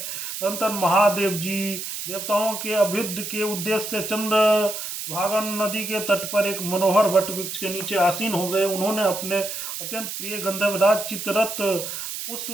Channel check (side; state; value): right; noise; hiss, 6 dB below the sound